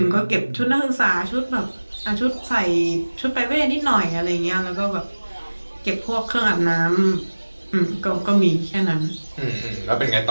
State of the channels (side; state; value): both; inverted; correlation -1.00